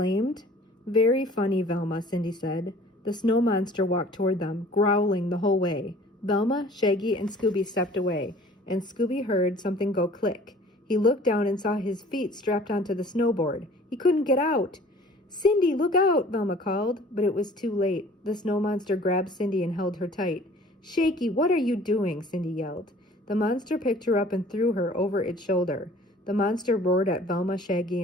"Very funny, Velma," Cindy said. The snow monster walked toward them, growling the whole way. Velma, Shaggy, and Scooby stepped away, and Scooby heard something go click. He looked down and saw his feet strapped onto the snowboard. He couldn't get out. "Cindy, look out!" Velma called, but it was too late. The snow monster grabbed Cindy and held her tight. "Shaky, what are you doing?" Cindy yelled. The monster picked her up and threw her over its shoulder. The monster roared at Velma, Shaggy,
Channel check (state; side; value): normal; both; correlation 0.50